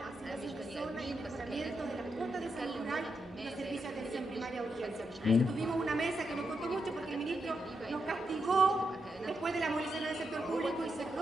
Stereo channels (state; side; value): normal; both; correlation 0.84